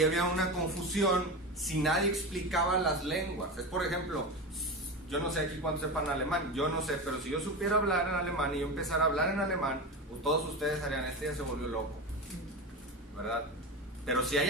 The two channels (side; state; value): both; normal; correlation 0.23